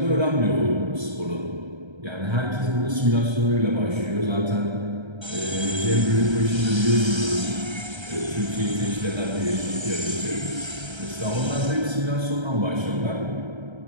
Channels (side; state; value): left; late; 1.3 ms